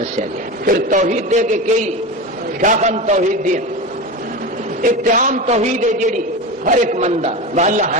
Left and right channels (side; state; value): both; normal; correlation 0.24